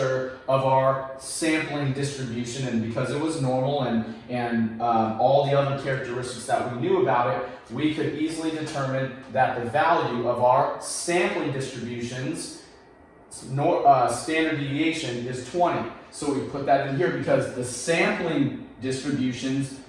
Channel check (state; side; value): identical; both; correlation 1.00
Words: of our sampling distribution, and because it was normal and all the other characteristics that we knew about it, we could easily determine that the value of our sampling distributions standard deviation is 20. So we put that in here because the sampling distributions